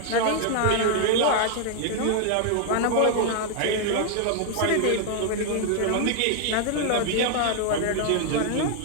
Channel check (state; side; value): different; both; correlation 0.00